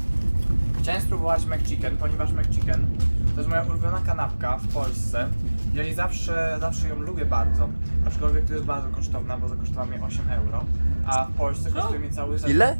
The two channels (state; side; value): inverted; both; correlation -1.00